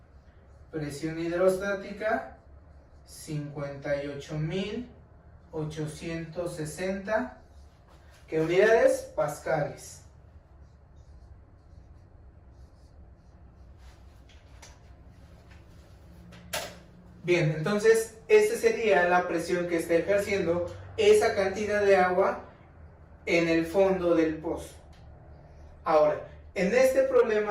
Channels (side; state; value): both; identical; correlation 1.00